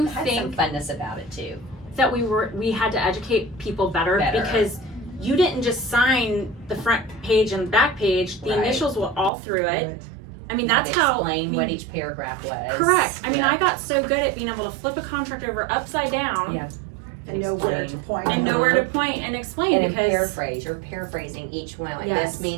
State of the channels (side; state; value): left; drops out; at 9.3 s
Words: had some think funness about it too. that we had to educate people better. Because you didn't just sign the front page and the back page. The Right. initials were all through it. Right. I mean, that's how. Explain I mean, what each paragraph was. correct. I mean, Yeah. I got so good at being able to flip a contract over upside down Yeah. And know where to Explain. point. and know where to point and explain And then because paraphrase. You're paraphrasing each one. Like, Yes. this